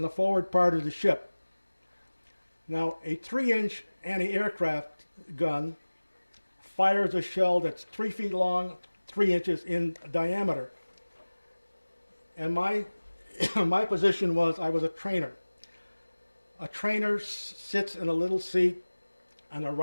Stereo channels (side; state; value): both; inverted; correlation -1.00